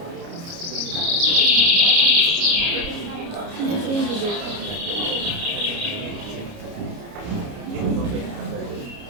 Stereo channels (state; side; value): late; left; 29 ms